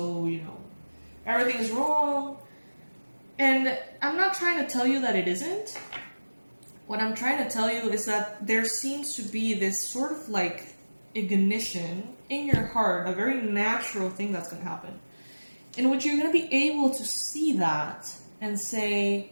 you know, everything is wrong. And I'm not trying to tell you that it isn't. What I'm trying to tell you is that there seems to be this sort of like ignition in your heart, a very natural thing that's going to happen, in which you're going to be able to see that and say,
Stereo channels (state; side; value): inverted; both; correlation -1.00